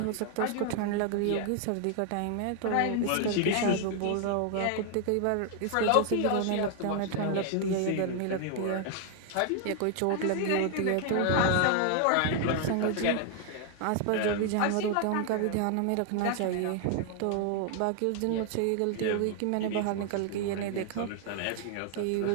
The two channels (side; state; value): both; different; correlation 0.00